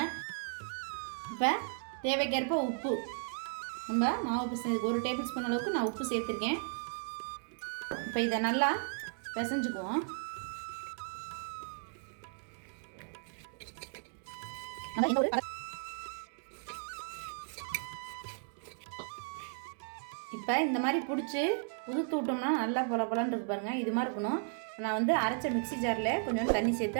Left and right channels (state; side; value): silent; left; 54 dB below the other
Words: இப்போ தேவைக்கேற்ப உப்பு. நம்ம மாவு பிசைஞ்சதுக்கு 1 டேபிள் ஸ்பூன் அளவுக்கு நான் உப்பு சேர்த்துருக்கேன். இப்போ இதை நல்லா பிசைஞ்சுக்குவோம். இப்போ இந்த மாதிரி பிடிச்சி உதுத்து விட்டோம்னா நல்லா பொல பொலன்னு இருக்கு பாருங்கள். இது மாதிரி இருக்கணும். நான் வந்து அரைச்ச மிக்ஸி ஜாரில் கொஞ்சம் தண்ணி சேர்த்து